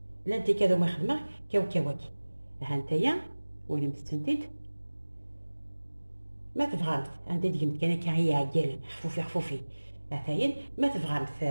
لا انت كذا ما خدمه كاوكاوكي ها نتايا وين متسنتيد ما تبغى عندي ديما كان هي عقال خفوفي مثلا ما تبغى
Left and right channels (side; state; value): both; inverted; correlation -1.00